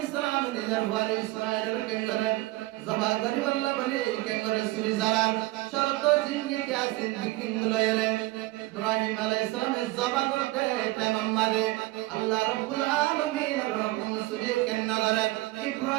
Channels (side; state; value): left; quieter; 19.4 dB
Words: সালাম নিজের বাড়ি ইসমাঈলের কেঙ্গরে জবা করি আল্লাহ বলে কেঙ্গরে সুরি জালাল শরত জিন্দি কে আসিন বিকিং লয়রে ইব্রাহিম আলাইহিস সালাম জবা করতে তামাম্মাদে আল্লাহ রাব্বুল আলামিন রকম সুরি কেঙ্গরে